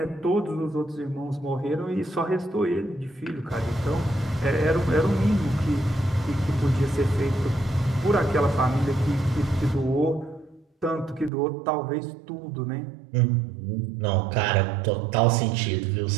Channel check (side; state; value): left; drops out; at 11.3 s